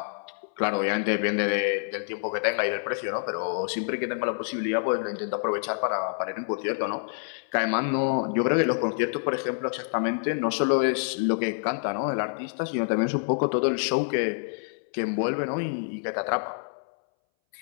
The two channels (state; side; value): silent; right; 60 dB below the other